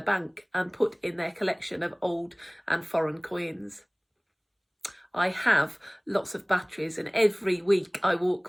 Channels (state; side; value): identical; both; correlation 1.00